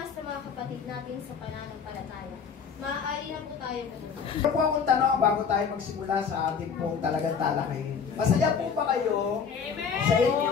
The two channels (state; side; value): quieter; right; 6.4 dB